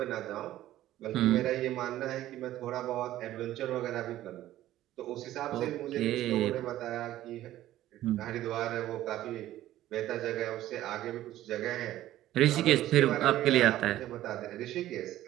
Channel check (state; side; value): quieter; left; 14.0 dB